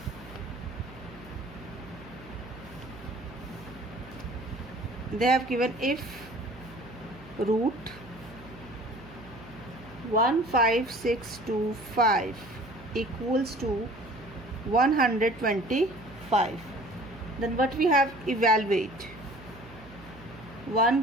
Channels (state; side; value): noise; right; hum, 18 dB below the sound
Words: if root 15625 equals to 125, then what we have, evaluate